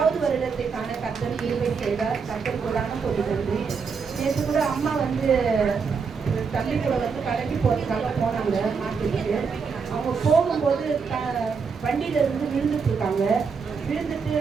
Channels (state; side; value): quieter; left; 5.5 dB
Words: வருடத்தை காண கர்த்தர் கிருபை செய்தார். கர்த்தர் கூடான நன்றி. நேற்று கூட அம்மா தம்பி கூட கடைக்கு போகிறதுக்காக போனாங்க மார்க்கெட்டுக்கு. அவங்க போகும்போது வண்டியில இருந்து விழுந்துட்டு இருக்காங்க. விழுந்துட்டு